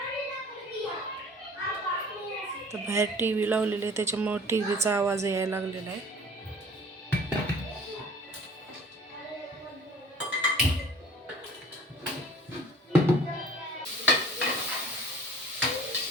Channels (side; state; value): both; normal; correlation 0.48